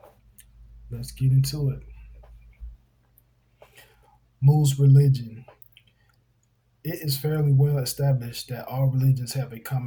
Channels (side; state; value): both; identical; correlation 1.00